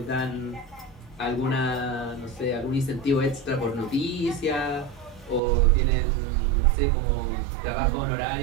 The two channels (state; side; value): drops out; left; at 5.4 s